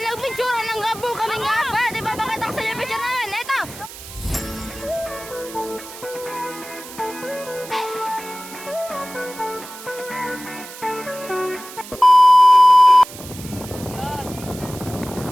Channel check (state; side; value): noise; right; hiss, 15 dB below the sound